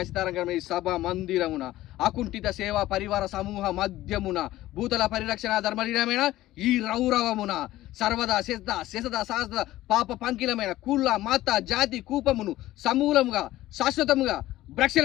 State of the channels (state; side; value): quieter; right; 15.7 dB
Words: సభ మందిరమున అకుంఠిత సేవా పరివార సమూహ మధ్యమున భూతల పరిరక్షణ ధర్మలీనమైన ఈ రౌరవమున సర్వదా శశద శాస్త్ర పాప పంకిలమైన కుల మత జాతి కూపమును సమూలముగా శాశ్వతముగా